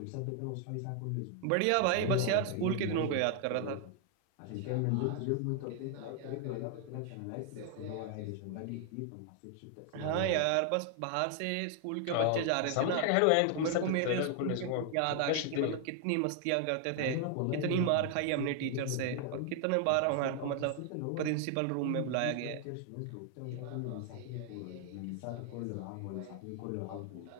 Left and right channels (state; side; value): different; both; correlation 0.00